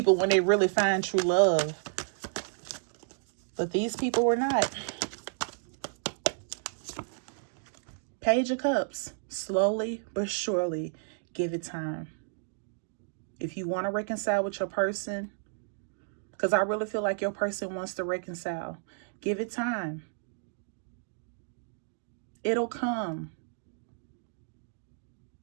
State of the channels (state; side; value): silent; left; digital silence